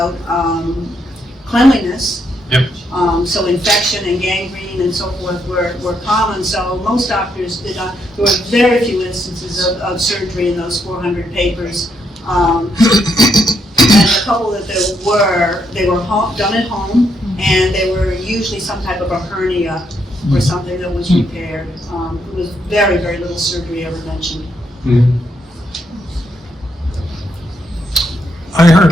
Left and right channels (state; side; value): normal; both; correlation 0.77